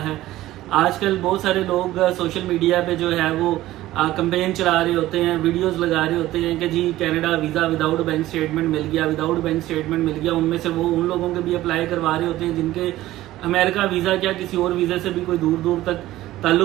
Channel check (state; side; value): quieter; left; 15.6 dB